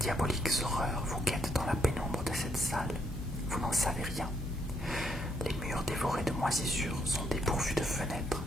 horreur vous guette dans la pénombre de cette salle? Vous n'en savez rien. Les murs dévorés de moisissures sont dépourvus de fenêtres,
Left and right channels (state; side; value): normal; both; correlation 0.73